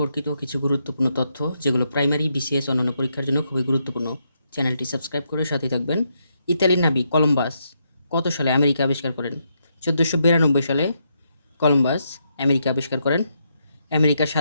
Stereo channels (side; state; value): both; inverted; correlation -0.79